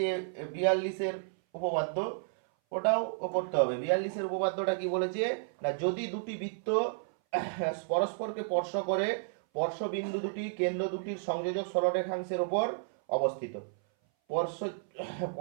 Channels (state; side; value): silent; left; 56 dB below the other